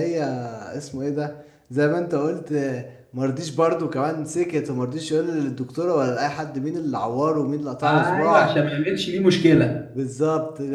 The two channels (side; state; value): both; identical; correlation 1.00